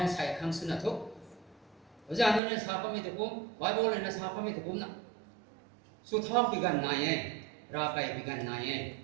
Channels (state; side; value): drops out; left; at 2.4 s